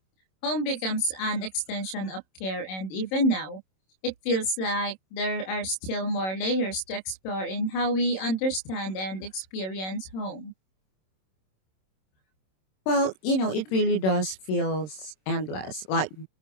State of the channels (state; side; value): late; right; 26 ms